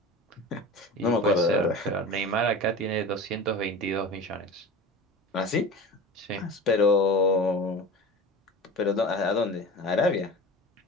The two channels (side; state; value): both; normal; correlation 0.34